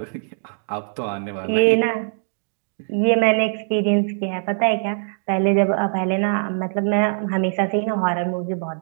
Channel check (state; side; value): silent; left; digital silence